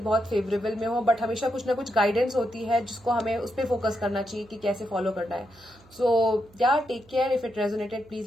बहुत फेवरेबल में हो, बट हमेशा कुछ ना कुछ गाइडेंस होती है जिसको हमें उस पर फोकस करना चाहिए कि कैसे फॉलो करना है। So yeah take care. If it resonated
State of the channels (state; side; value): noise; right; hum, 27 dB below the sound